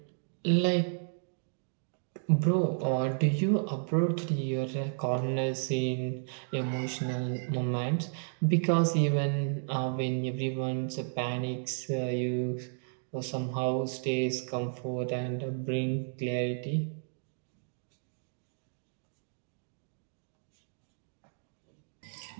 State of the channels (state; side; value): silent; left; digital silence